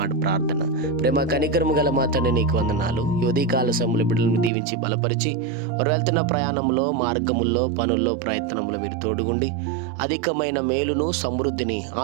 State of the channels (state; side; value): drops out; left; at 4.5 s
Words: ప్రార్థన. ప్రేమ కనికరము గల మా తండ్రి, నీకు వందనాలు. ఈ ఉదయకాల సమయంలో బిడ్డలను దీవించి బలపరిచి, వారు వెళ్తున్న ప్రయాణంలో, మార్గముల్లో, పనుల్లో, ప్రయత్నంలో మీరు తోడుగుండి అధికమైన మేలును, సమృద్ధిని,